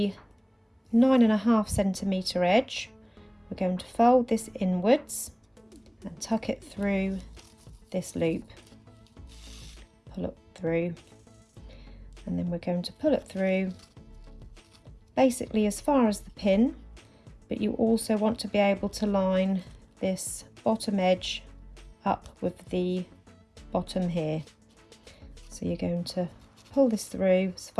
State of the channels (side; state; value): both; identical; correlation 1.00